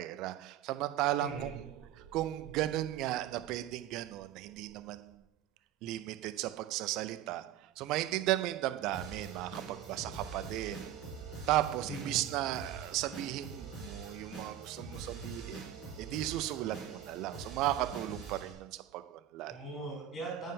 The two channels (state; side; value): quieter; left; 12.0 dB